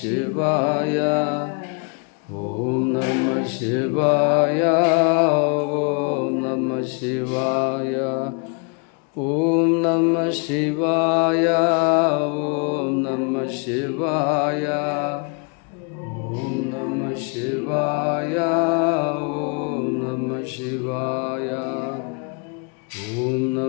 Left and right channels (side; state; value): right; quieter; 37.1 dB